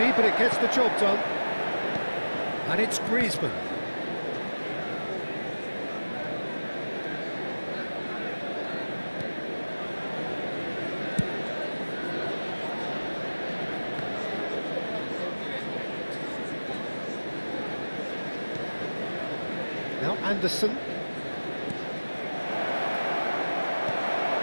but it gets the job done. And it's Griezmann. Now Anderson.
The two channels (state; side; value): inverted; both; correlation -1.00